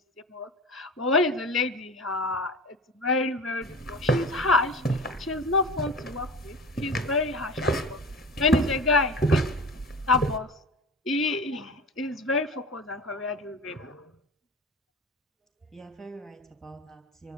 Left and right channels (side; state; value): both; normal; correlation 0.33